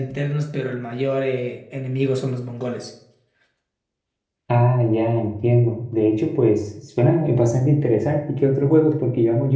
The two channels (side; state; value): both; identical; correlation 1.00